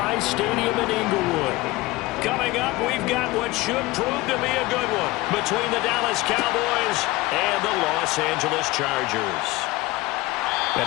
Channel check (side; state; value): right; quieter; 19.8 dB